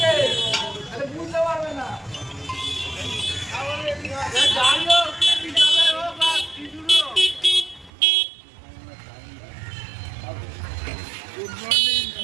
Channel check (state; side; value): drops out; left; at 7.9 s